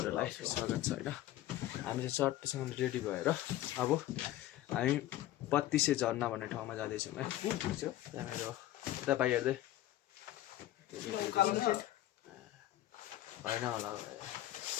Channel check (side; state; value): right; quieter; 14.3 dB